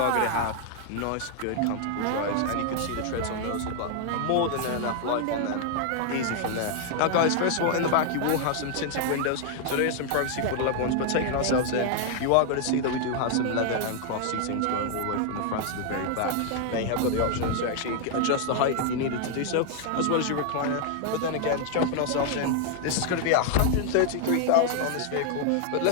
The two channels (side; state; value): both; different; correlation 0.00